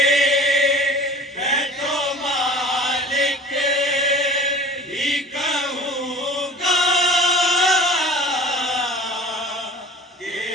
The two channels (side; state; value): both; normal; correlation 0.42